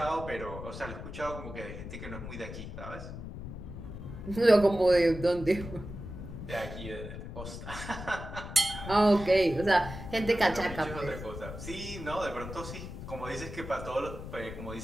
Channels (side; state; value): left; noise; rumble, 10 dB below the sound